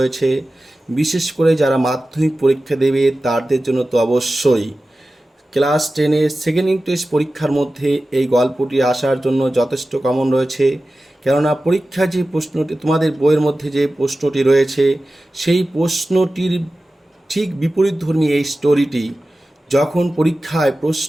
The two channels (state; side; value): normal; both; correlation 0.95